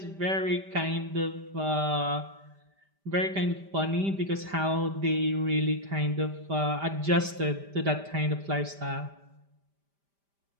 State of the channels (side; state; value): left; late; 5.1 ms